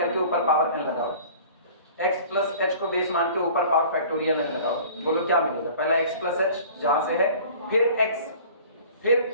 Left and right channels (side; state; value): both; inverted; correlation -0.46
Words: ऊपर पावर n लगाओ, x प्लस h को बेस मान के ऊपर पावर फैक्टोरियल n लगाओ, बोलो क्या मिलेगा, पहला x प्लस h जहां से है, फिर